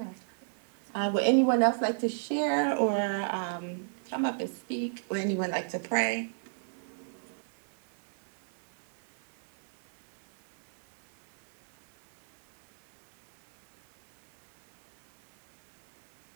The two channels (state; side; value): silent; left; 56 dB below the other